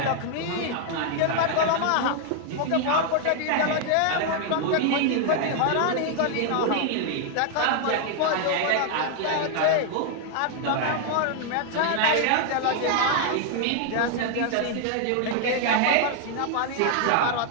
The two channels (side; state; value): both; different; correlation 0.00